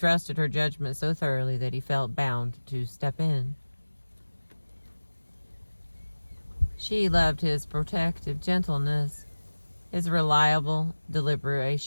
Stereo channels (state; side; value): inverted; both; correlation -1.00